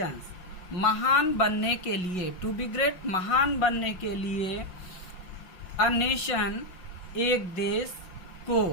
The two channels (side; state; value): right; late; 5.5 ms